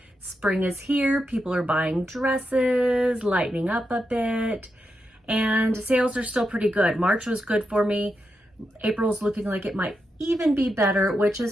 Spring is here. People are buying dresses, lightening up a bit, and sales are still pretty good. March was good for me. April's looking like it might even be better, which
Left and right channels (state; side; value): normal; both; correlation 0.86